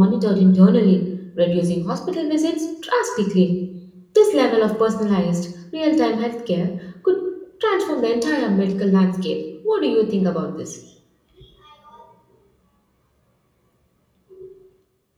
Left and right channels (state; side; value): identical; both; correlation 1.00